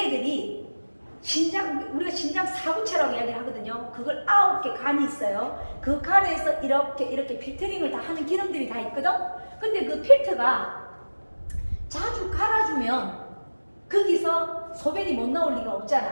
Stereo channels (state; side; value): inverted; both; correlation -1.00